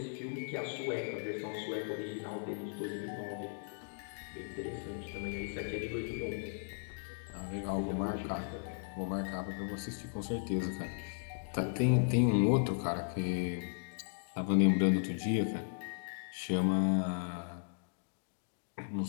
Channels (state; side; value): silent; right; digital silence